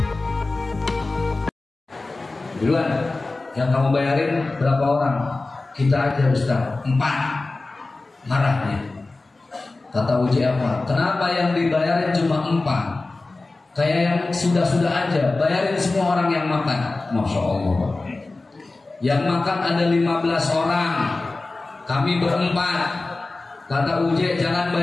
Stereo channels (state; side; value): quieter; right; 3.3 dB